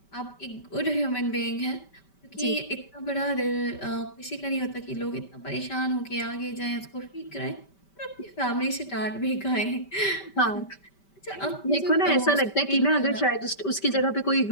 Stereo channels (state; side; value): late; right; 5.2 ms